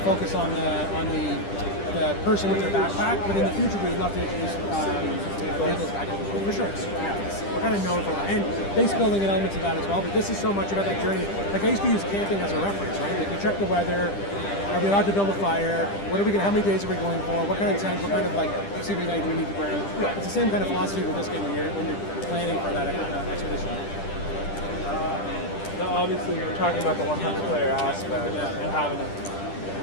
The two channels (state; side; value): late; right; 10 ms